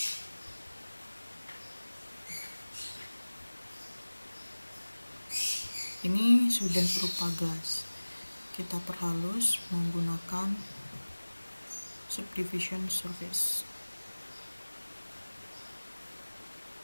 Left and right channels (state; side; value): inverted; both; correlation -1.00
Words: ini sudah berupa gelas. Kita perhalus menggunakan subdivision surface.